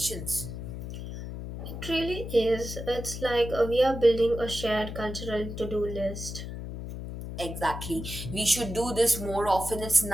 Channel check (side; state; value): left; noise; hum, 8 dB below the sound